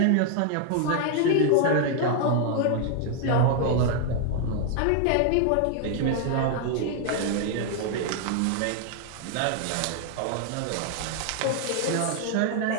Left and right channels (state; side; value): different; both; correlation 0.00